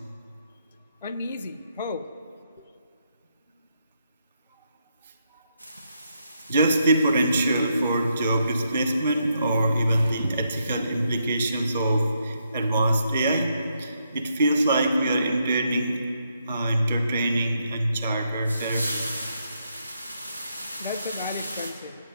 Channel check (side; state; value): both; inverted; correlation -0.78